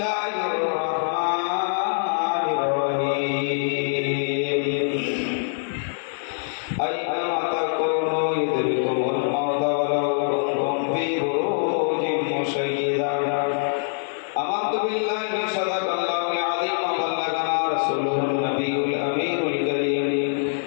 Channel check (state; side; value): silent; right; digital silence